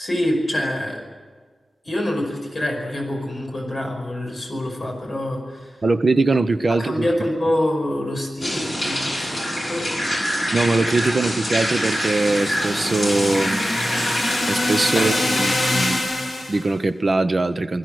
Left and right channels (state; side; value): normal; both; correlation 0.93